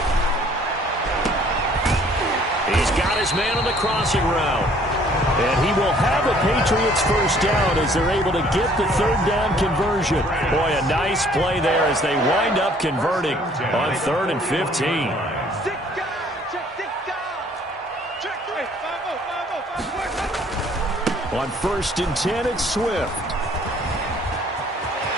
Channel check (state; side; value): normal; both; correlation 0.58